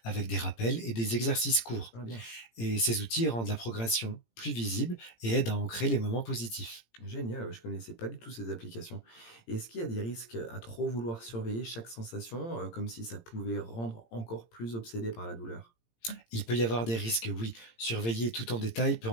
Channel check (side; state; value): right; late; 17 ms